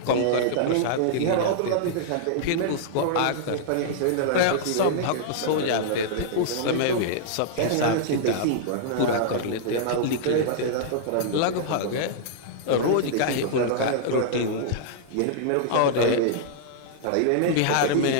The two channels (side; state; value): both; different; correlation -0.01